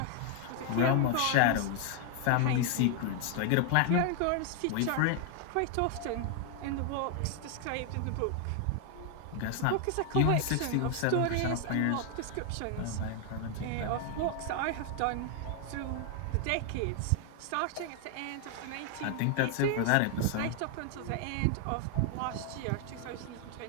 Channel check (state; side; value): different; both; correlation 0.00